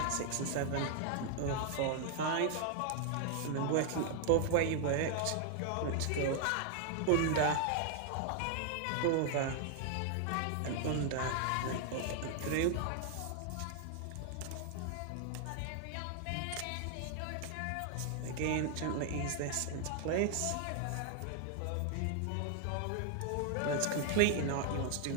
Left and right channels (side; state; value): both; different; correlation 0.00